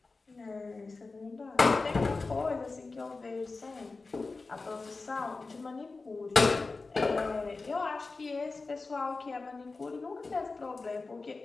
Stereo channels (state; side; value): quieter; right; 3.8 dB